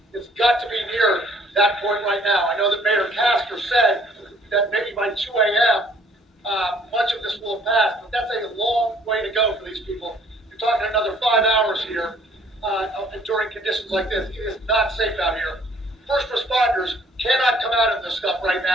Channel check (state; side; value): normal; both; correlation 0.59